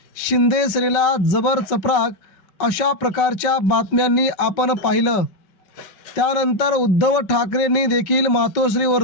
शिंदे सेनेला जबर चपराक अशा प्रकारच्या बातम्यांनी आपण पाहिलं. त्यानंतर उद्धव ठाकरेंनी देखील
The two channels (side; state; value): right; late; 5.3 ms